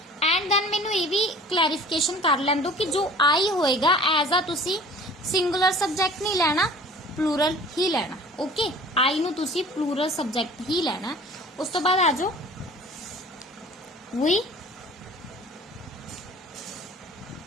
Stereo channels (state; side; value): normal; both; correlation 0.46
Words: And then मैनू ये भी clarification कर लैन दो कि जो आई होएगा एज आ तुसी सिंगुलर सब्जेक्ट नहीं लेना, प्लूरल ही लेना। ओके, आई नू तुसी प्लूरल सब्जेक्ट ही लेना। उस तो बाद आ जाओ